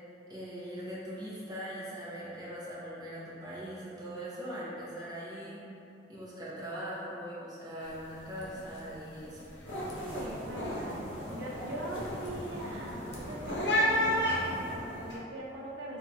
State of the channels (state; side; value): normal; both; correlation 0.23